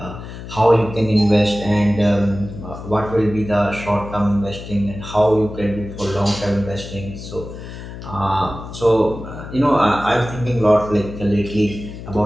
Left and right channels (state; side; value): noise; left; hum, 11 dB below the sound